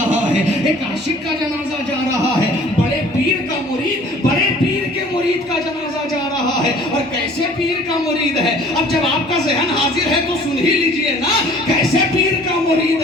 ہے، ایک عاشق کا جنازہ جا رہا ہے، بڑے پیر کا مرید، بڑے پیر کے مرید کا جنازہ جا رہا ہے۔ اور کیسے پیر کا مرید ہے؟ اب جب آپ کا ذہن حاضر ہے تو سن ہی لیجئے نا، کیسے پیر کا مرید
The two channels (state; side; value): normal; both; correlation 0.52